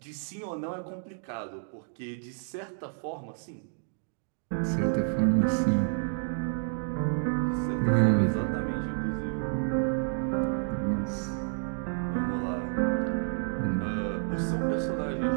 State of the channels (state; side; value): silent; left; digital silence